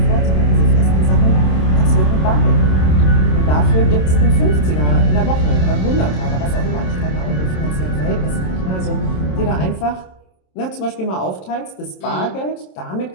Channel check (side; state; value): right; late; 27 ms